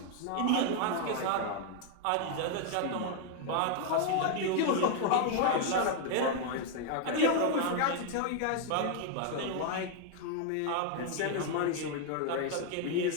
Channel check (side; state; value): both; different; correlation 0.00